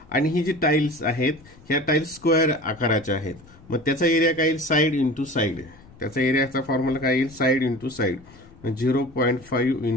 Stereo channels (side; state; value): left; noise; rumble, 24 dB below the sound